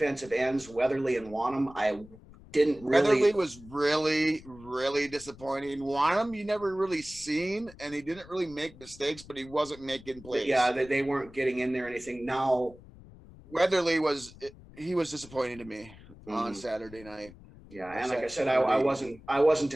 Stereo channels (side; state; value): left; noise; rumble, 20 dB below the sound